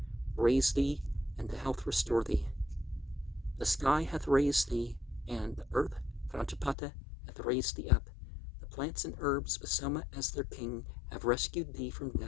raise thee, and to health restore thee. The sky hath raised thee, and the earth, Prajapata, hath raised thee up. The plants and herbs, with Soma as their king, have rescued thee from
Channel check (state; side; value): drops out; right; at 6.8 s